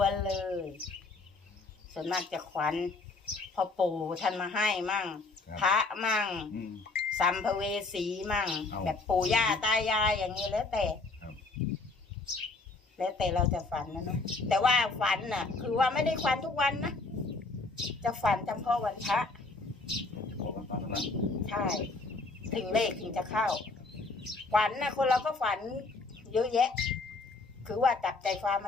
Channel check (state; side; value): quieter; right; 3.6 dB